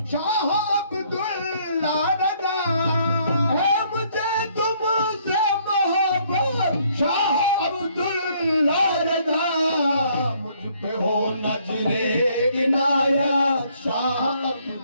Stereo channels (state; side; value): inverted; both; correlation -0.65